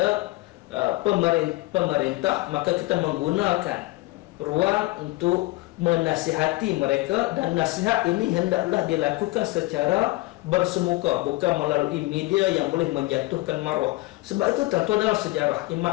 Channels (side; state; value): right; quieter; 20.5 dB